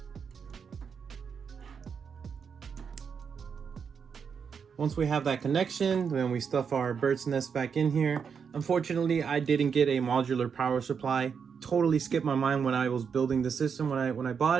Once we have that connection, then we stuff our bird's nest back in here. Unfortunately, I didn't get a modular power supply. Totally skipped my mind when I was building the system when I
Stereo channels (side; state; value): left; quieter; 6.5 dB